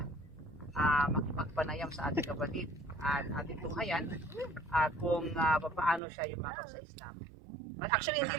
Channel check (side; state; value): left; drops out; at 6.0 s